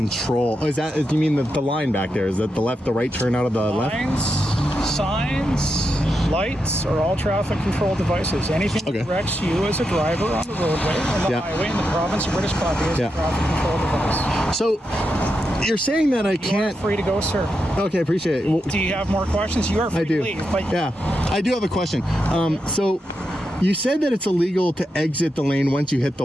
Oh, is that, you mean the line back there? Is that the left, the right turn out of the left? Lines, signs, lights are all traffic control devices. Anything that directs you as a driver on the roadway, on the highway in the province of British Columbia is a traffic control device. So you're saying that I can't... You're free to go, sir. Okay, appreciate it. Well, do you have more questions? You are free to leave. But yeah, I do have a question. So you said that it's illegal to exit the lane once you hit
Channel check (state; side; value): normal; both; correlation 0.86